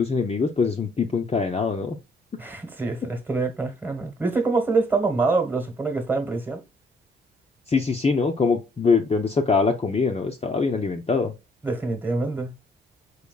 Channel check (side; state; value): both; normal; correlation 0.66